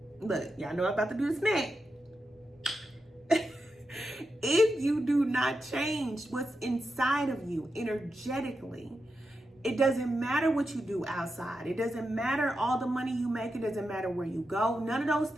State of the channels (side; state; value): both; normal; correlation 0.88